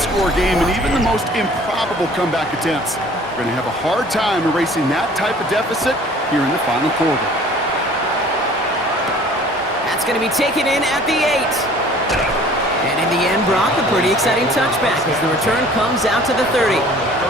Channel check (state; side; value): normal; both; correlation 0.51